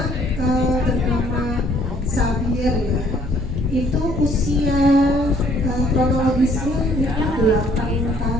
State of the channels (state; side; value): normal; both; correlation 0.62